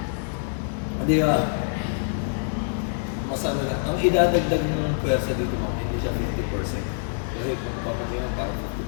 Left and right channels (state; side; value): silent; right; digital silence